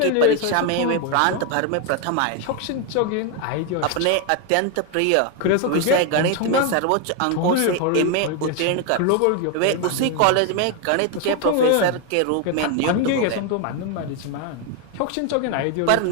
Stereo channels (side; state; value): both; different; correlation 0.01